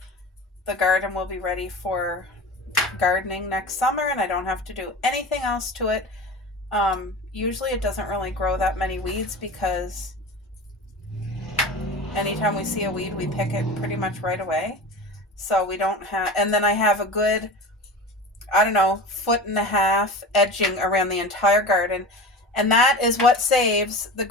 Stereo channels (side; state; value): both; normal; correlation 0.32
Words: garden will be ready for gardening next summer, and I don't have to do anything else to it. Usually it doesn't really grow that many weeds because anytime we see a weed, we pick it pretty much right away. So we don't have, and then I have a good, 1.5 foot edging around the entire garden. And that is what saves the